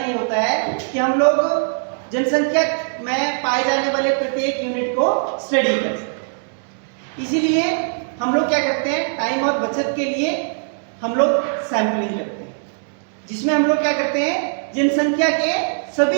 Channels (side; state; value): left; silent; digital silence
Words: होता है कि हम लोग जनसंख्या में पाए जाने वाले प्रत्येक यूनिट को स्टडी कर सकें। इसीलिए हम लोग क्या करते हैं, टाइम और बचत के लिए हम लोग सैंपलिंग करते हैं, जिसमें हम लोग क्या करते हैं, जनसंख्या के